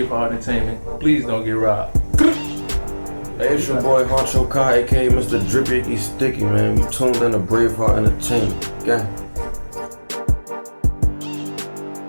Entertainment. Please don't get robbed. Hey, it's your boy Huncho, aka Mr. Drippy Icky Sticky, man. We tuned in to BraveHeartEnt Entertainment. Gang.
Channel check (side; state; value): both; inverted; correlation -1.00